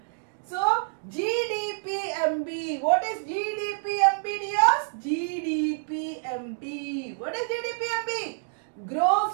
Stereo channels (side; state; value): left; silent; digital silence